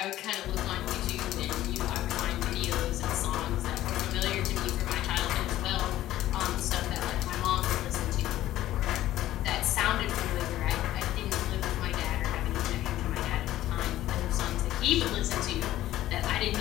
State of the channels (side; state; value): right; quieter; 14.2 dB